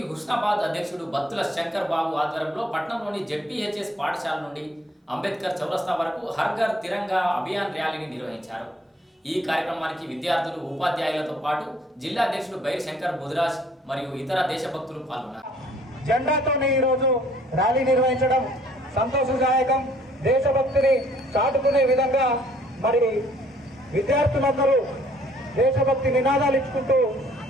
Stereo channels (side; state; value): both; normal; correlation 0.60